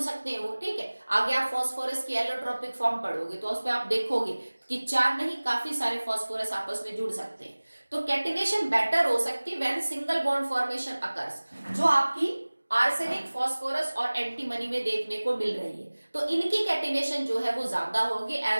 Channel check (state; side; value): inverted; both; correlation -1.00